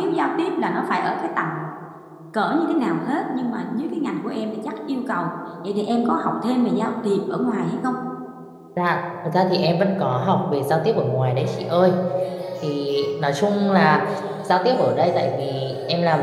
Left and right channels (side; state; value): both; identical; correlation 1.00